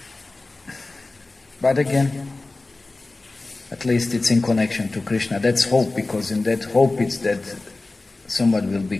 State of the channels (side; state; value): right; quieter; 3.2 dB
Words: But again, at least it's in connection to Krishna. That's hope, because in that hope it's that someone will